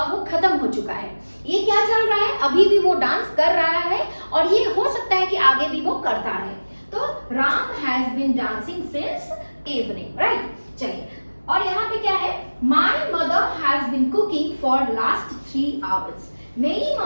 वो खत्म हो चुका है, ये क्या चल रहा है, अभी भी वो डांस कर रहा है और ये हो सकता है कि आगे भी वो करता रहे। तो Ram has been dancing since evening, right. चलिए, और यहाँ पे क्या है, my mother has been cooking for last 3 hours. मेरी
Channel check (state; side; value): inverted; both; correlation -1.00